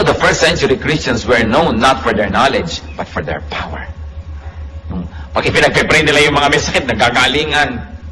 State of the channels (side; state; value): both; identical; correlation 1.00